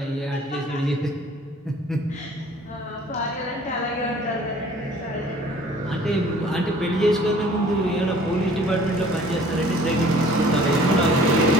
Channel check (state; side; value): normal; both; correlation 0.52